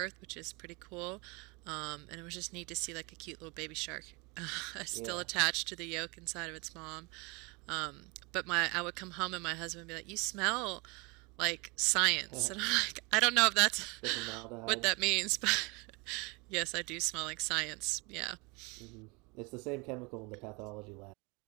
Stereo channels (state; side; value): quieter; left; 28.3 dB